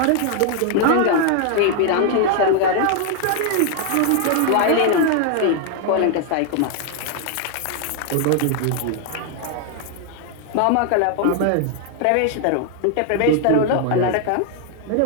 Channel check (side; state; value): both; different; correlation 0.00